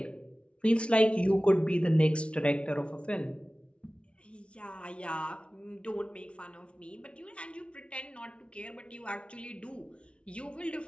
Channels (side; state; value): right; late; 0.059 ms